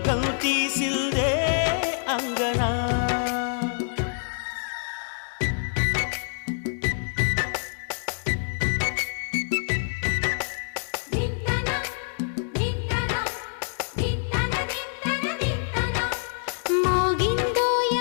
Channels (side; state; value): right; silent; digital silence